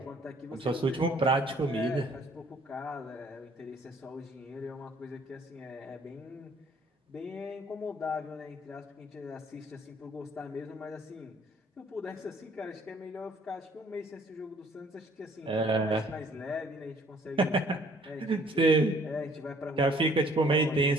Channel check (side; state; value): both; normal; correlation 0.59